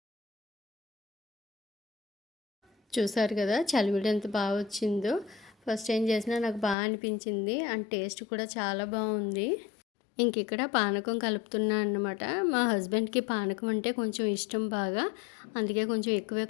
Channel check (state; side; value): drops out; right; at 6.8 s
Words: చూసారు కదా చలివిడి ఎంత బాగా వచ్చిందో. ఫస్ట్ టైం చేసినా నాకు బాగా అనిపించింది, అండ్ టేస్ట్ కూడా చాలా బాగుంది. ఇంక ఇక్కడ పానకం కలుపుతున్నా అన్నమాట. మా హస్బెండ్కి పానకం అంటే కొంచెం ఇష్టం బాగా, అందుకే కొంచెం ఎక్కువే